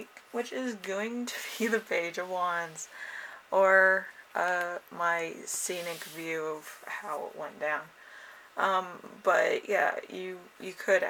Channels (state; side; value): identical; both; correlation 1.00